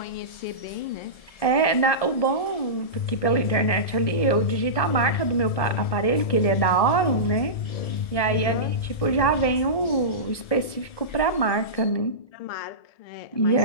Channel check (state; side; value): late; right; 1.7 ms